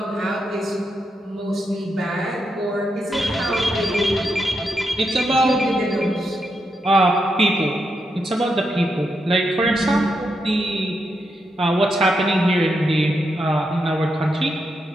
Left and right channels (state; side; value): normal; both; correlation 0.83